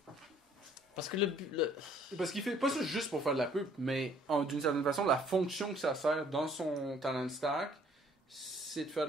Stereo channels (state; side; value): normal; both; correlation 0.60